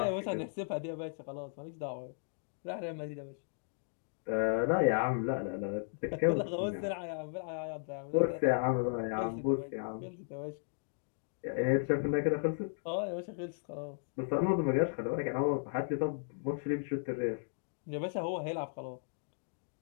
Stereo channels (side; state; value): right; silent; digital silence